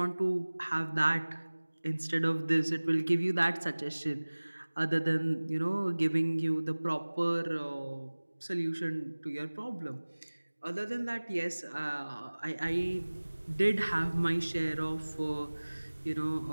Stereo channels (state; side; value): inverted; both; correlation -1.00